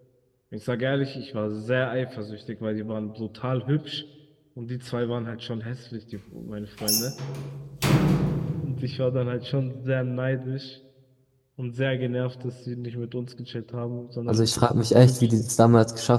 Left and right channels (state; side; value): identical; both; correlation 1.00